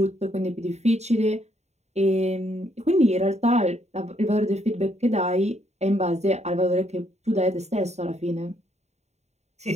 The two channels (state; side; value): late; left; 0.32 ms